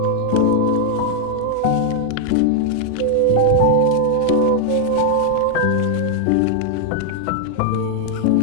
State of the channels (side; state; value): both; different; correlation 0.00